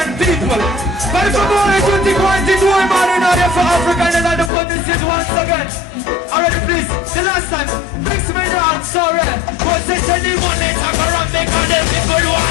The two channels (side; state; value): right; drops out; at 4.5 s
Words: people. But if I'm only tutti quanti due mani in aria for Africa and another put this shit once again. Already please, the last time, mix me down, sorry. Cause they said they want it, I'm around because the people